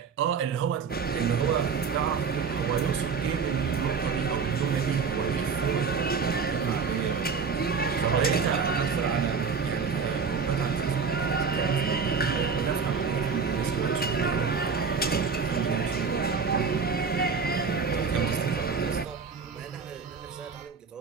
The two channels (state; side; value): quieter; left; 5.6 dB